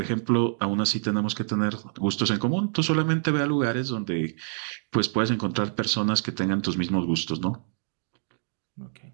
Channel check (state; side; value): silent; left; digital silence